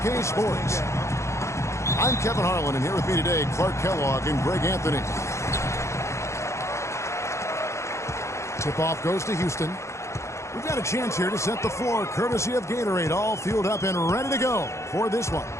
Sports. I'm Kevin Harlan, and here with me today, Clark Kellogg and Greg Anthony. Tip-off goes to Houston. We've got a chance here to set the floor, courtesy of Gatorade, all fueled up and ready to go for this one.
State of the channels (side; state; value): right; late; 0.14 ms